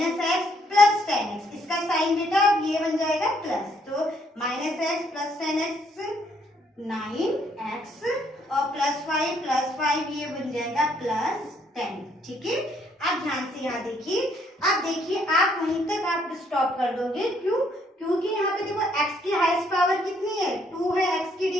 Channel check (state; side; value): normal; both; correlation 0.69